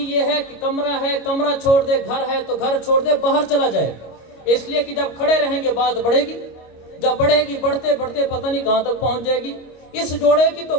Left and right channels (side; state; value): right; late; 25 ms